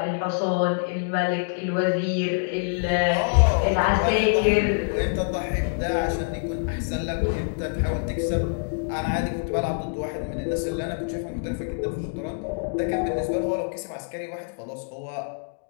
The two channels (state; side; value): silent; right; digital silence